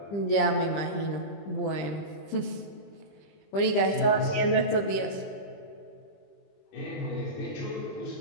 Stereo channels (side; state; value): right; late; 20 ms